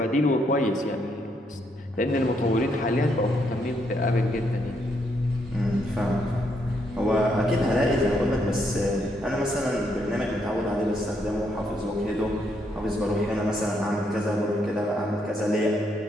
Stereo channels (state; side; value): normal; both; correlation 0.75